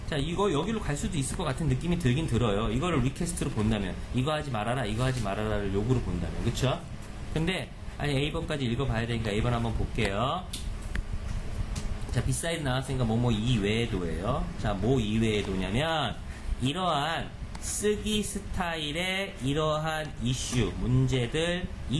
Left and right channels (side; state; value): both; identical; correlation 1.00